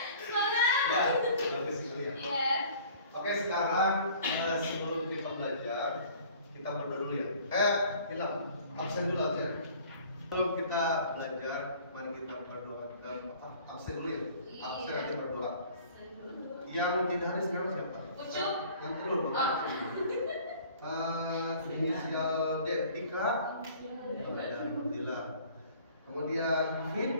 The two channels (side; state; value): both; inverted; correlation -0.50